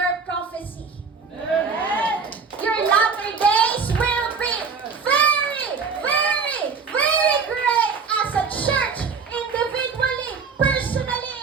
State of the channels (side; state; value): left; quieter; 5.4 dB